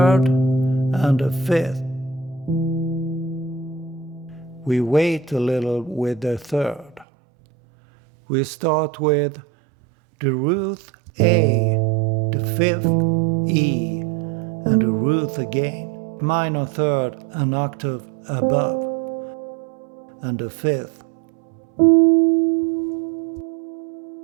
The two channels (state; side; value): drops out; left; at 7.1 s